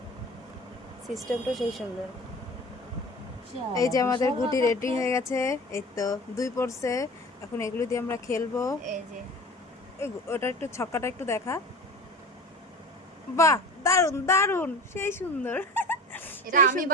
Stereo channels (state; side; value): normal; both; correlation 0.37